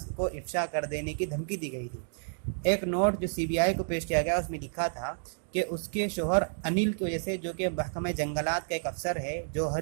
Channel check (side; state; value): left; silent; digital silence